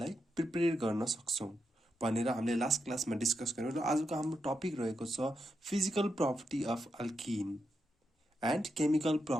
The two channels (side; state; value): both; normal; correlation 0.84